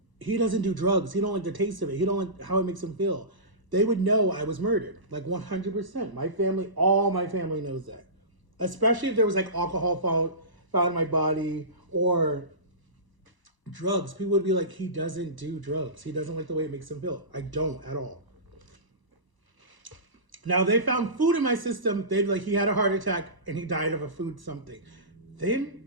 he doesn't do drugs. He don't like the taste of it. He don't like how it makes him feel. They would know I was murdered, like 100%. My family, all my family knows that. Especially if there was like alcohol found in my body or drugs. People would be like, he doesn't do drugs. He doesn't like the way it makes him feel. I don't at all. Now they found food in my system. They'd like he had a heart attack and he died of a food something.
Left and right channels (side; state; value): left; late; 1.0 ms